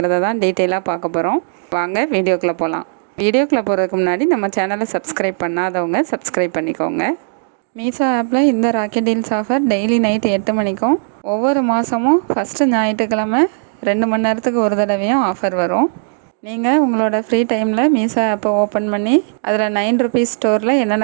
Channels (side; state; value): left; silent; digital silence